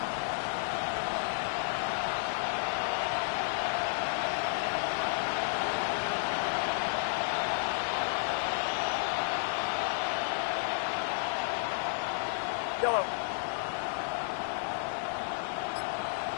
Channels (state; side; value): silent; right; digital silence